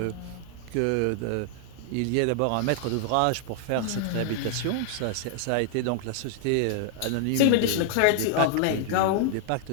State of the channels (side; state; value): both; different; correlation 0.00